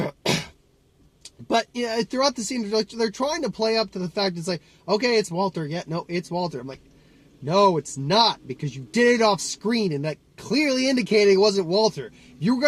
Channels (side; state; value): both; identical; correlation 1.00